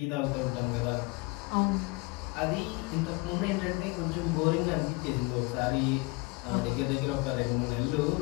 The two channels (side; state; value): right; quieter; 25.9 dB